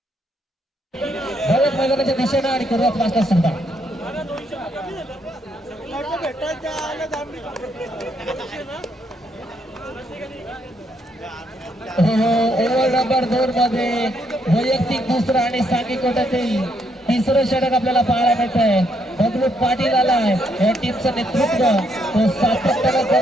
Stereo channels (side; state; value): both; normal; correlation 0.74